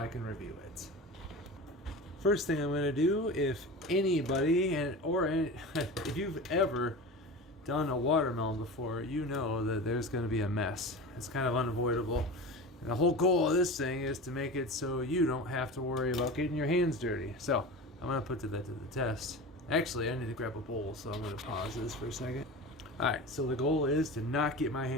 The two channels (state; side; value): normal; both; correlation 0.31